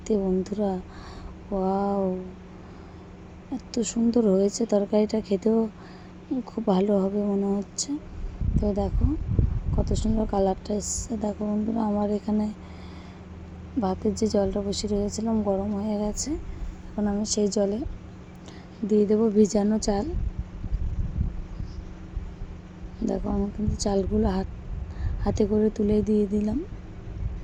বন্ধুরা, ওয়াও, এত সুন্দর হয়েছে তরকারিটা, খেতেও খুব ভালো হবে মনে হচ্ছে। তো তো দেখো কত সুন্দর কালারটা এসছে। দেখো বন্ধুরা, আমার এখানে ভাতের যে জলটা বসিয়ে রেখেছিলাম গরম হয়ে গেছে। এখন আমি সেই জলে দিয়ে দেবো ভিজানো চাল। দেখো আমি কিন্তু চালগুলো হাতে করে তুলে দিয়ে দিলাম।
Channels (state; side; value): identical; both; correlation 1.00